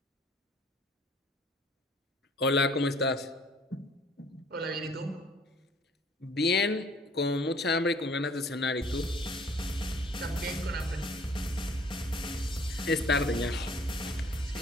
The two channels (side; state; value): both; normal; correlation 0.55